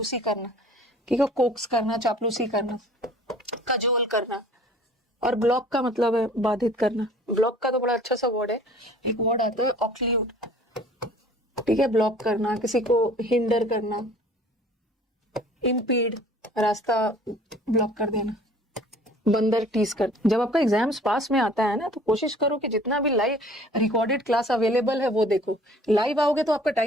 करना, ठीक है, कोक्स करना, चापलूसी करना, कजोल करना। और ब्लॉक का मतलब है बाधित करना। ब्लॉक का तो बड़ा अच्छा सा वर्ड है, एक वर्ड आता है ऑक्ल्यूड, ठीक है, ब्लॉक करना, किसी को हिंडर करना, इम्पीड, रास्ता ब्लॉक कर देना, बंदर टीज कर। जब आपका एग्जाम्स पास में आता है ना तो कोशिश करो कि जितना भी लाइव रिकॉर्डेड क्लास अवेलेबल है वो देखो। लाइव आओगे तो आपका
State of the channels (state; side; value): normal; both; correlation 0.50